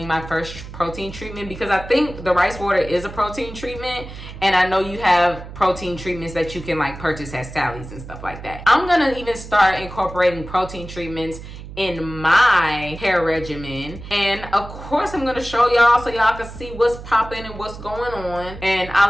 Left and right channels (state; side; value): noise; right; hum, 13 dB below the sound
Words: my first protein treatment, because I think the rice water is a protein treatment. And I know you have protein treatments that you can like purchase at Sally's and stuff like that. I'm going to even start incorporating protein treatments in my hair regimen, and of course I'm going to show y'all so y'all can see what's popping and what's going on, and